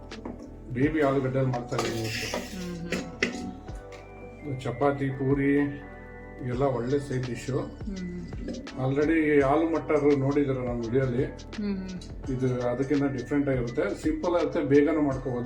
ಬೇಬಿ ಆಲೂಗಡ್ಡೆ ಮಾಡ್ತಾ ಇದ್ದೀವಿ. ಚಪಾತಿ, ಪೂರಿ ಎಲ್ಲ ಒಳ್ಳೆ side dish. Already aloo matar ನೋಡಿದಾರೆ ನಮ್ಮ ವಿಡಿಯೋಲಿ. ಇದು ಅದಕ್ಕಿಂತ ಡಿಫ್ರೆಂಟ್ ಆಗಿರುತ್ತೆ. ಸಿಂಪಲ್ ಆಗುತ್ತೆ, ಬೇಗನೆ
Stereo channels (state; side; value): identical; both; correlation 1.00